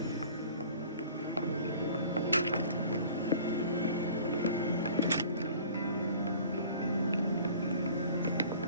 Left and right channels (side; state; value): both; inverted; correlation -0.48